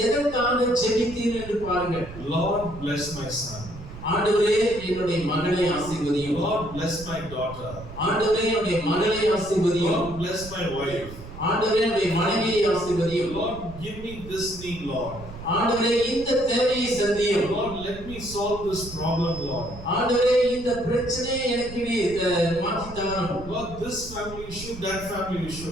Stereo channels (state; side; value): noise; right; rumble, 14 dB below the sound